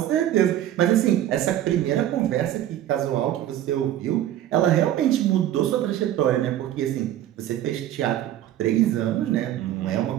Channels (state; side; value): quieter; left; 12.2 dB